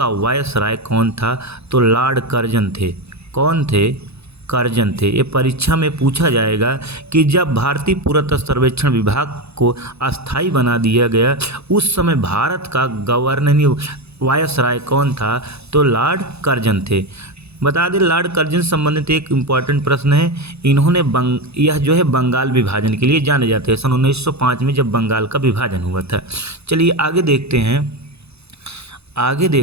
वायसराय कौन था? तो लॉर्ड कर्जन थे। कौन थे? कर्जन थे। ये परीक्षा में पूछा जाएगा कि जब भारतीय पुरातत्व सर्वेक्षण विभाग को अस्थाई बना दिया गया उस समय भारत का गवर्नर वायसराय कौन था? तो लॉर्ड कर्जन थे। बता दें लॉर्ड कर्जन संबंधित एक इम्पॉर्टेंट प्रश्न है। इन्होंने यह जो है बंगाल विभाजन के लिए जाने जाते हैं। सन 1905 में जब बंगाल का विभाजन हुआ था। चलिए आगे देखते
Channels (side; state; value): left; late; 0.79 ms